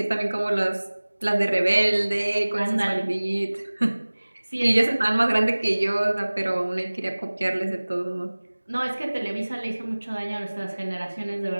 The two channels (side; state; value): both; inverted; correlation -1.00